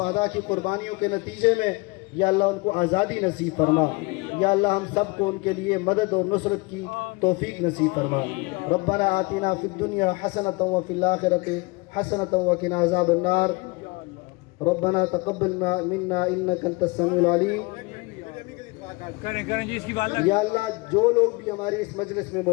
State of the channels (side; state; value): right; quieter; 26.0 dB